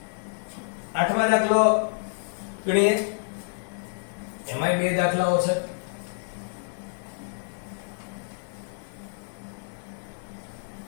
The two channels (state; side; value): silent; right; digital silence